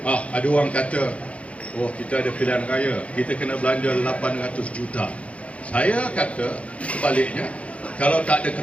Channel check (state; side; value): late; right; 0.064 ms